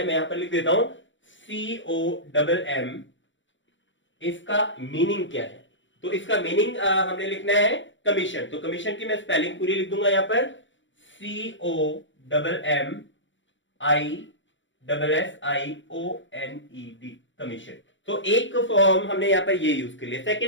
मैं यहां पर लिख देता हूं COMM। इसका मीनिंग क्या है, तो इसका मीनिंग हमने लिखना है कमीशन। तो कमीशन की मैं स्पेलिंग पूरी लिख दूंगा यहां पर COMMISSIONED, कमीशन। तो एक फॉर्म हमने यहां पर ये यूज कर लिया।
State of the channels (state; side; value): late; right; 0.55 ms